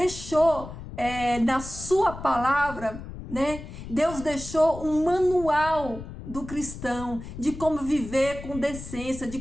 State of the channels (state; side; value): noise; left; rumble, 12 dB below the sound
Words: na sua palavra, né? Deus deixou um manual do cristão de como viver com decência, de